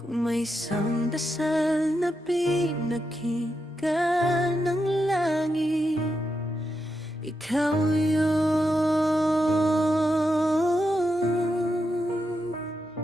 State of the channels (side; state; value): both; normal; correlation 0.85